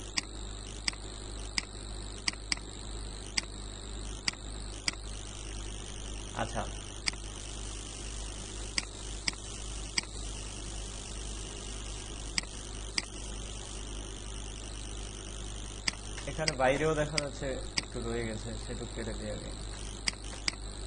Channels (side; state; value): both; identical; correlation 1.00